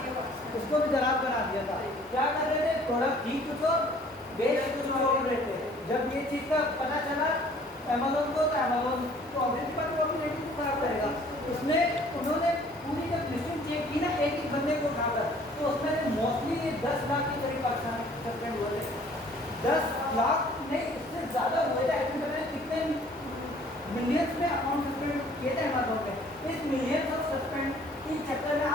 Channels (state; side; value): normal; both; correlation 0.55